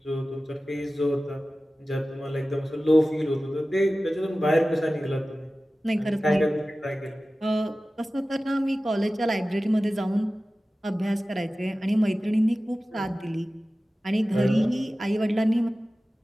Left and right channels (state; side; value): normal; both; correlation 0.96